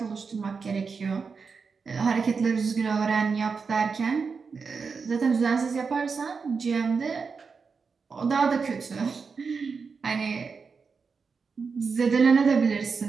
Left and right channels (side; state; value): left; quieter; 5.2 dB